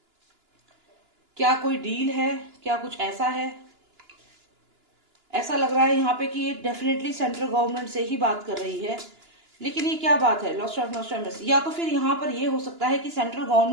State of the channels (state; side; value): late; left; 2.9 ms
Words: क्या कोई डील है? क्या कुछ ऐसा है? ऐसा लग रहा है यहाँ पे कि ये डेफिनेटली सेंट्रल गवर्नमेंट से ही बात कर रही है, लेकिन ये क्या बात है? Lost of Nostradamus. या तो फिर यहाँ पर ये हो सकता है कि सेंट्रल